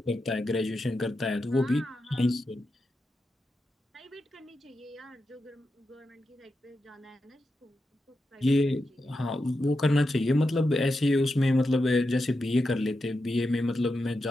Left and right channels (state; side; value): normal; both; correlation 0.88